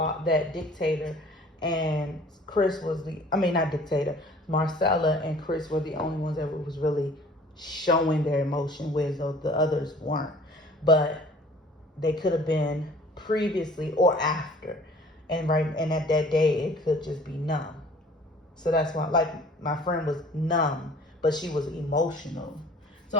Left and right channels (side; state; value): both; normal; correlation 0.50